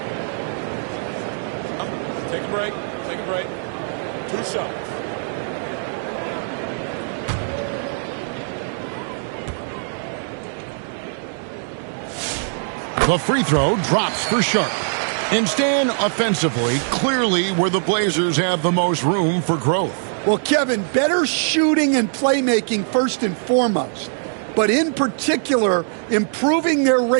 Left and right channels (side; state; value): left; silent; digital silence